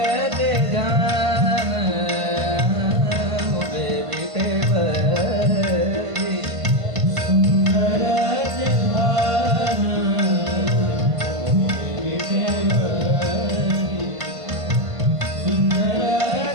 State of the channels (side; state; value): left; late; 1.5 ms